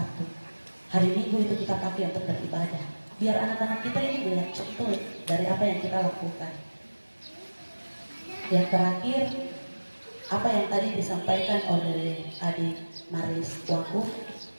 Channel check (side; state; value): both; inverted; correlation -1.00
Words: Hari Minggu itu kita pakai untuk beribadah. Biar anak-anak kita ini melihat contoh dari apa yang kita lakukan. Yang terakhir, apa yang tadi disampaikan oleh adik Maris Wakuf,